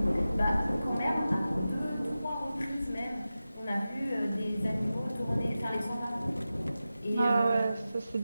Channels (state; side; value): inverted; both; correlation -0.94